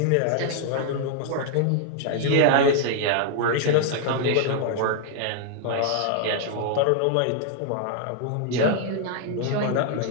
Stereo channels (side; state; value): both; different; correlation 0.00